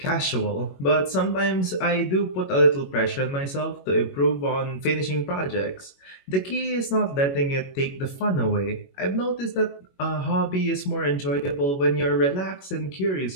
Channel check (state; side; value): late; right; 21 ms